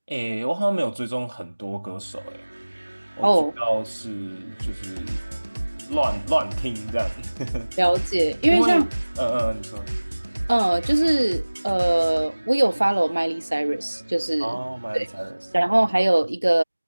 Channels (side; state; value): both; inverted; correlation -1.00